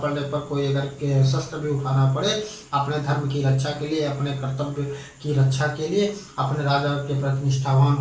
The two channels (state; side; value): identical; both; correlation 1.00